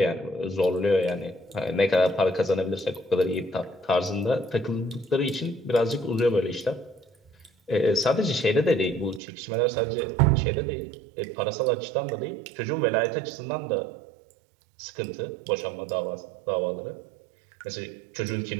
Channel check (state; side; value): drops out; left; at 9.2 s